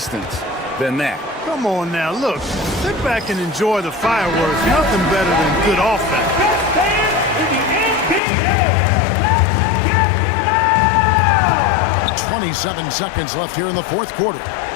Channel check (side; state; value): right; drops out; at 8.2 s